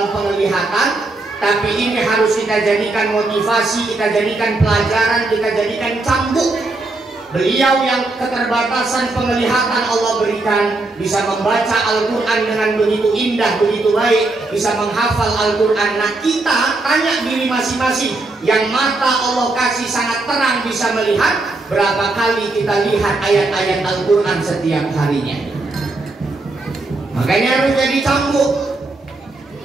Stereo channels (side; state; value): left; quieter; 3.1 dB